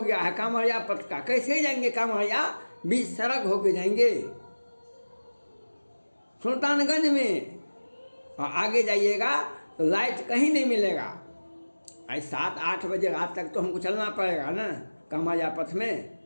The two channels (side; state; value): both; inverted; correlation -1.00